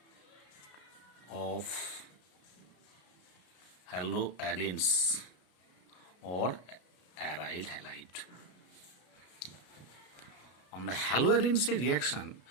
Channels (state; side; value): late; right; 33 ms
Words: of haloarenes or aryl halide. আমরা হ্যালোয়ারিনসের রিয়াকশন